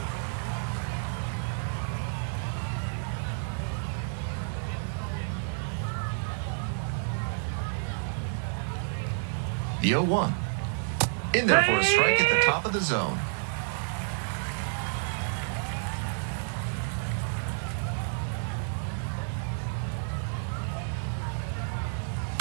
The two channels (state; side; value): silent; left; 58 dB below the other